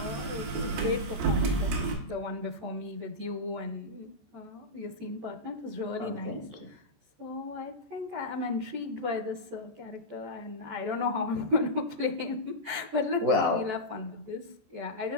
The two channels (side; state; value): left; late; 14 ms